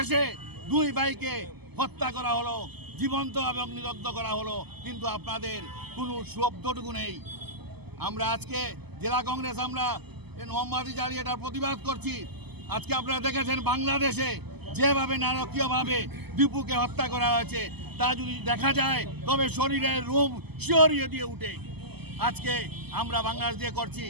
দুই ভাইকে হত্যা করা হলো, জীবন্ত এবং নিদগ্ধ করা হলো, কিন্তু আপনাদের কোনো শব্দটুকু নেই। আমরা আজকে জেলা কংগ্রেস আমরা মোমবাতি জ্বালিয়ে এটার প্রতিবাদ করছি। আজকে আপনারা দেখেছেন বাংলাদেশে যেভাবে নারকীয়ভাবে দীপুকে হত্যা করা হয়েছে তা যদি দেখা যায় তবে শরীরের রোম শিহরিয়ে দিয়ে উঠে। আজকে আমরা বাংলাদেশ দিয়ে করছি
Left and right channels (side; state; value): left; late; 0.98 ms